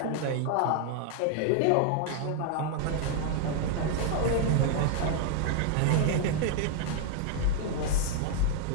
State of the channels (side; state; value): both; different; correlation 0.00